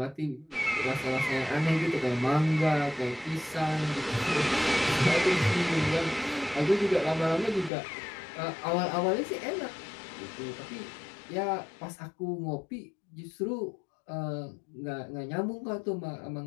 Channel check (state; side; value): drops out; right; at 7.7 s